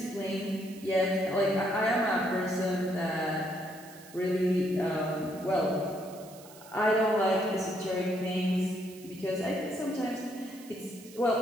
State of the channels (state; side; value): noise; right; hiss, 20 dB below the sound